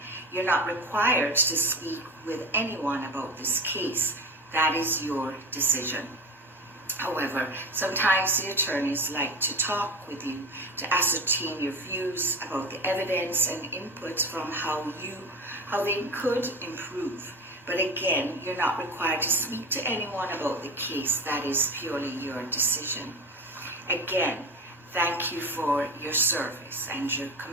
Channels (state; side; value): normal; both; correlation 0.29